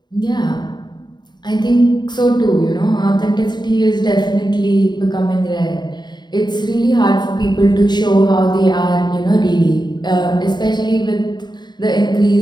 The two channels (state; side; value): late; right; 0.21 ms